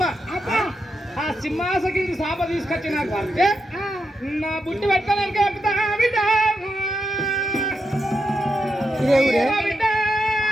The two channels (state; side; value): normal; both; correlation 0.85